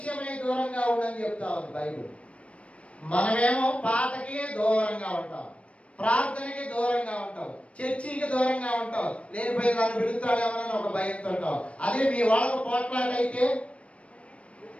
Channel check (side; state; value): right; late; 0.062 ms